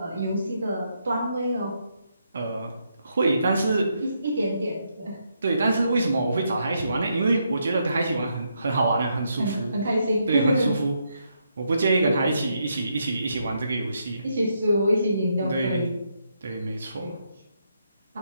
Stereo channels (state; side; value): inverted; both; correlation -0.78